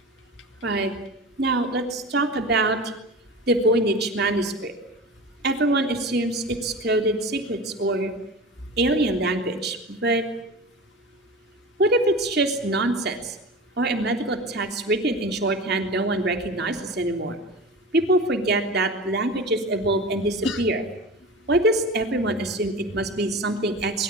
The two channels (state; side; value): normal; both; correlation 0.32